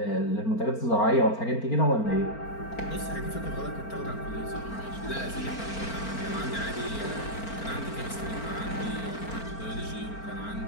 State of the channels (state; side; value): late; right; 4.4 ms